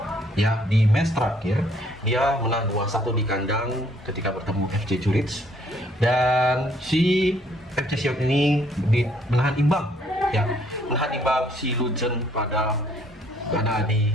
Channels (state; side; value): normal; both; correlation 0.64